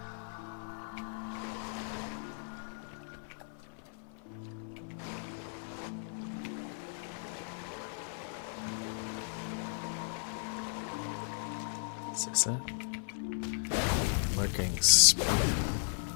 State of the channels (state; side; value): silent; right; 54 dB below the other